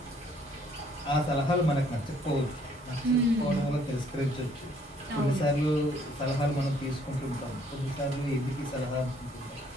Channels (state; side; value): normal; both; correlation 0.64